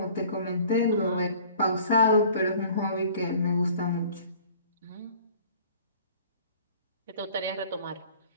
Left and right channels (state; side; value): inverted; both; correlation -0.50